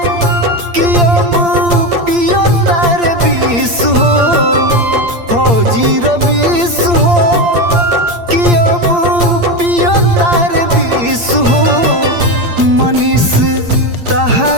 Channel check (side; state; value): left; late; 8.7 ms